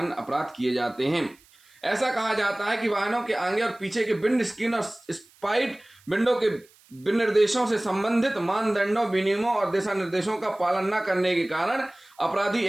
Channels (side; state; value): right; noise; hiss, 29 dB below the sound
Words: अपराध किए जाते हैं। ऐसा कहा जाता है कि वाहनों के आगे और पीछे के विंड स्क्रीन और स्पाइड विंडो के विनिर्देशों से संबंधित मानदंडों, विनियमों और दिशा निर्देशों का पालन न करने के कारण अपराधी